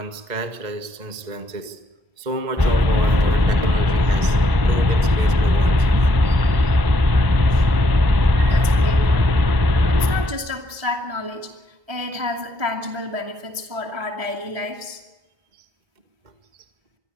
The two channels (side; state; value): left; late; 1.3 ms